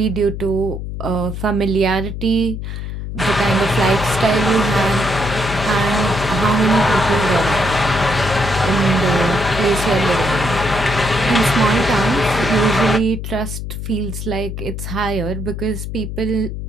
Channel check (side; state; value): left; noise; hum, 6 dB below the sound